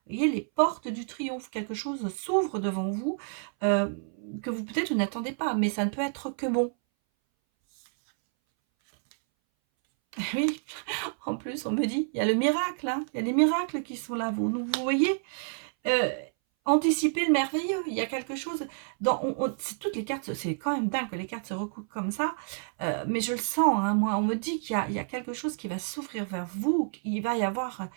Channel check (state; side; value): silent; left; 59 dB below the other